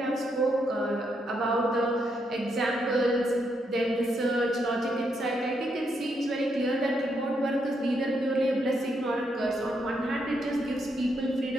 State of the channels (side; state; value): both; normal; correlation 0.78